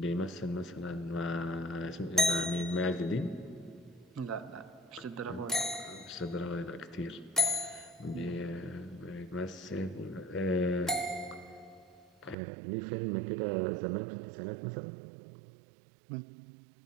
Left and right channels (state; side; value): drops out; left; at 12.4 s